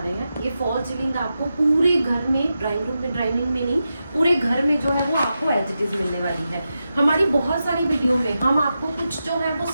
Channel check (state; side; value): inverted; both; correlation -0.90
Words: हैं, ये फॉल सीलिंग आपको पूरे घर में, ड्राइंग में नहीं, पूरे घर में जो है वो आपको एज इट इज मिलने वाली है। हमारी बहुत सारी वीडियो में हम आपको कुछ जो है वो